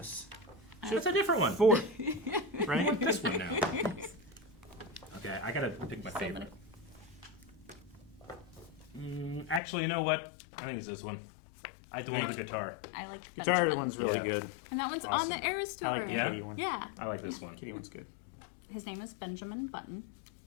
That's a different one. 4. I Right? want this one now. Okay, I gotta pick my favorite. Actually, you know what? I think it's this one. I like the one with the guitar. I like the Guitar Benjamin. one's really Yeah. good. And that one's Awesome. on the Eras Tour. I like the Yeah? kitty one. Yeah. I like this one. Kitty one's good. His name is Benjamin Button.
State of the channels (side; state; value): right; drops out; at 9.6 s